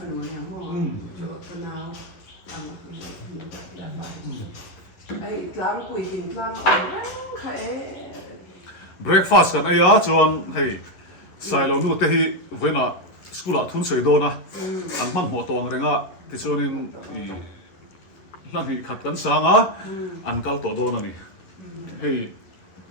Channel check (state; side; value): late; right; 11 ms